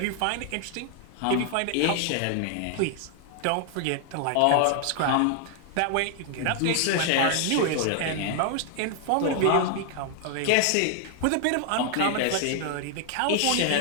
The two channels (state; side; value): different; both; correlation 0.00